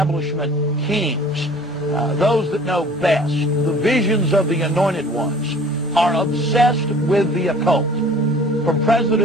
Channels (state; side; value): normal; both; correlation 0.48